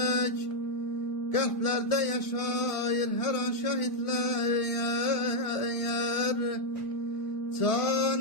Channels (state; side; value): late; right; 1.6 ms